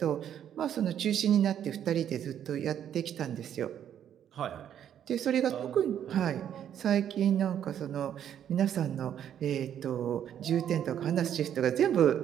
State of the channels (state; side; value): quieter; left; 9.8 dB